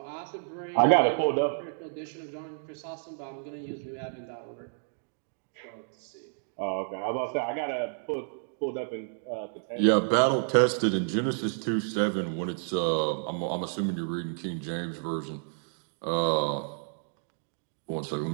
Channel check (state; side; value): silent; left; digital silence